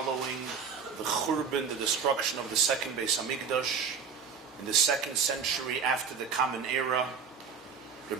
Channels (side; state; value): left; quieter; 6.3 dB